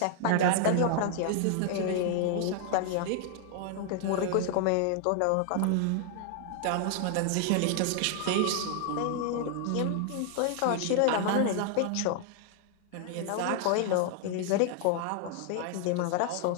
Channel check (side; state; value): both; different; correlation 0.00